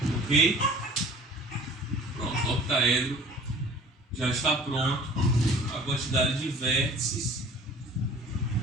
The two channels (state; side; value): normal; both; correlation 0.46